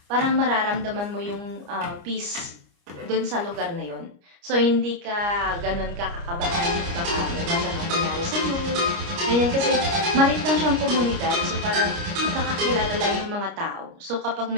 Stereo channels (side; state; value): left; late; 29 ms